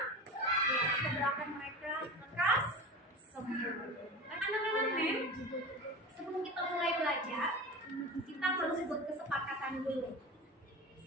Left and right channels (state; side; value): normal; both; correlation 0.30